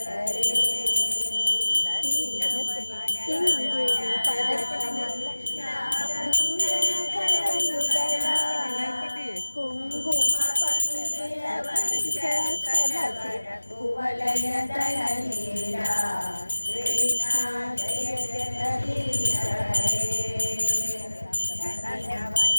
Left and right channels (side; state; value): both; inverted; correlation -1.00